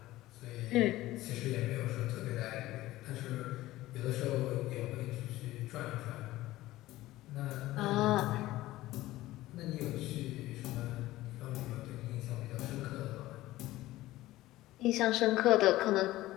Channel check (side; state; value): right; quieter; 16.7 dB